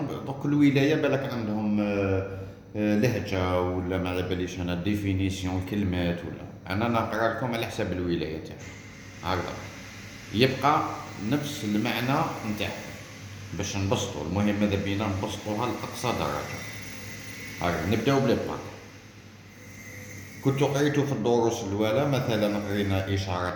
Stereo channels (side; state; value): both; identical; correlation 1.00